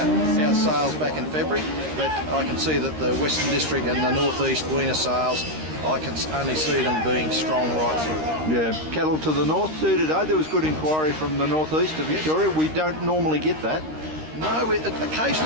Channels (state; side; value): late; left; 13 ms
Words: sales back in February. But I can see that the Western District and the North East weaner sales, I can only see them being strong right through. Yeah, cattle to the north too today. There was good inquiry from the northeast of Victoria. We don't normally get that. No,